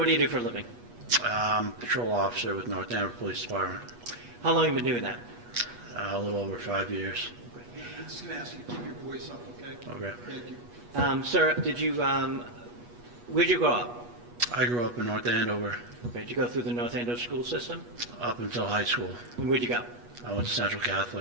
do you do for a living? Patrol officer with North Andover Police Department. How long have you been doing that? A little over 5 years. Just gonna ask you to keep your voice up, okay? Okay. Thank you. Sir, where'd you grow up? I grew up in North Andover Okay, did you go through the North Andover school system? up until high school. And where'd you go? I went to Central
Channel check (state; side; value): late; left; 8.3 ms